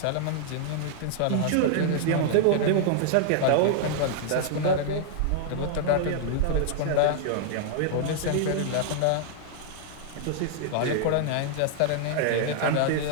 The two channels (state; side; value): different; both; correlation -0.01